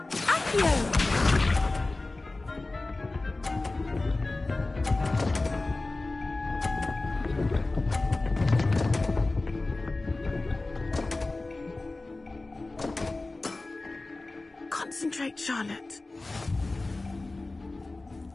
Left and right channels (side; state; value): right; quieter; 3.1 dB